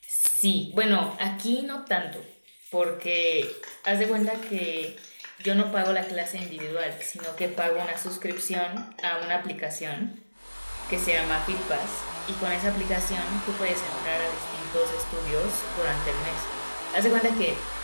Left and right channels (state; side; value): inverted; both; correlation -1.00